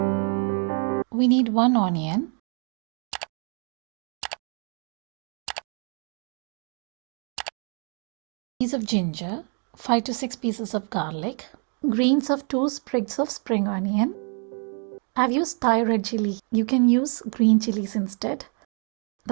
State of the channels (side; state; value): left; quieter; 38.2 dB